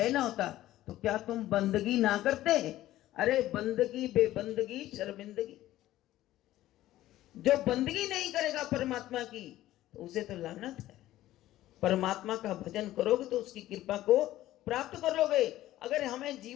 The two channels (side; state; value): right; quieter; 14.7 dB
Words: ना होता, तो क्या तुम बंदगी ना करते? अरे बंदगी बेबंदगी शर्मिंदगी, जो बंदगी नहीं करेगा परमात्मा की तो उसे तो लानत है। परमात्मा का भजन करोगे तो उसकी कृपा को प्राप्त करोगे। अगर हमें